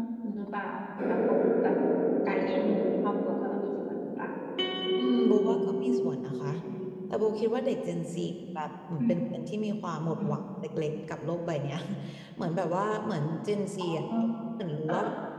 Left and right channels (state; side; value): identical; both; correlation 1.00